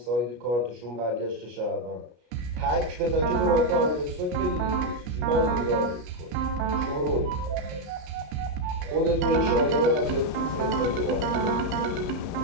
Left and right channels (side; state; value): left; late; 33 ms